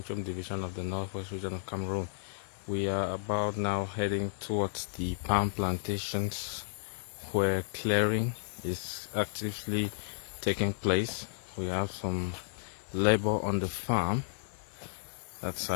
division of the Northwest region of Cameroon. We are about now heading towards the palm plantations where clearing is actively taking place. We have some labor on the farm that's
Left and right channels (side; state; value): right; silent; digital silence